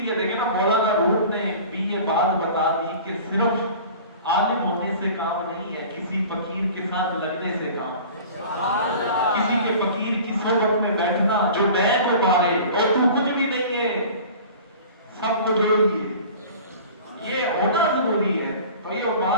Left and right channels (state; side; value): inverted; both; correlation -0.41